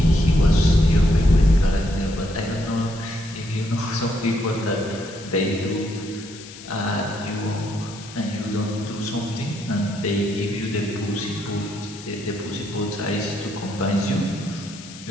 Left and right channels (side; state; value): left; noise; hiss, 16 dB below the sound